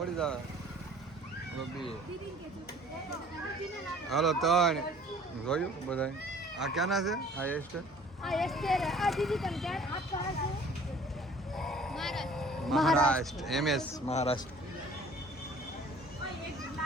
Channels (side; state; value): both; normal; correlation 0.52